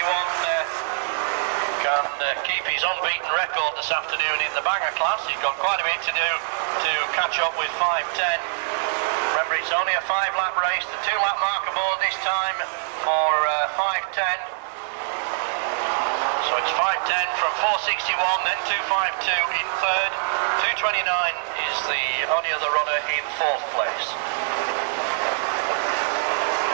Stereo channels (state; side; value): silent; left; digital silence